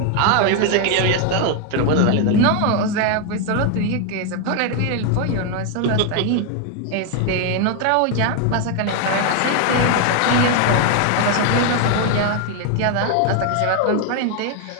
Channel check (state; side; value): different; both; correlation 0.01